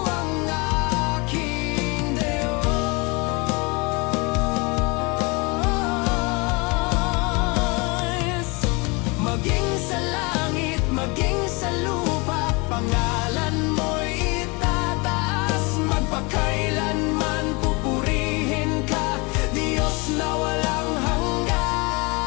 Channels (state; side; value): quieter; right; 28.1 dB